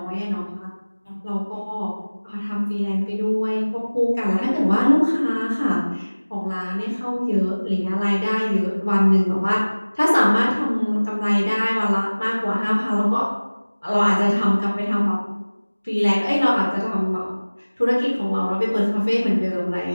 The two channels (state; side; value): inverted; both; correlation -1.00